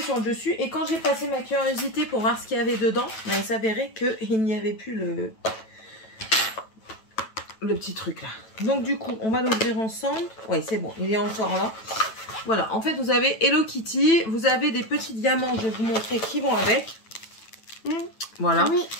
sur le dessus. Et quand j'ai passé ma curiosité pour voir ce qu'il y avait dedans, ben, il s'avérait qu'il n'y avait plus le petit truc là. Donc du coup, on va l'ouvrir ensemble. Oui, c'est bon, il est encore là. Voilà, en fait, vous avez Hello Kitty. Vous avez des petits diamants, je vais vous montrer qui vont avec. Voilà. Oui.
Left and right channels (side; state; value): right; late; 9.1 ms